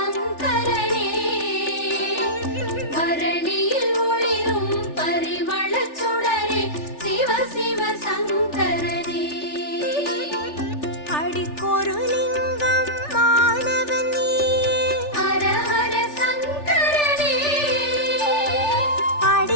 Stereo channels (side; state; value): right; late; 3.4 ms